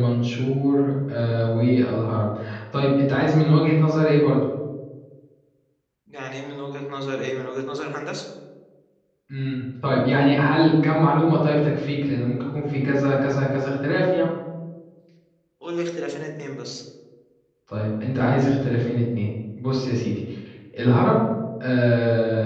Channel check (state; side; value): identical; both; correlation 1.00